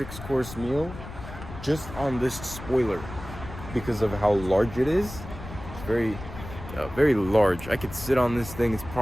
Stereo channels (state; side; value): noise; left; rumble, 12 dB below the sound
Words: course meal just on this spoiler because of how large it is. It's very large. I could sit on this thing. It's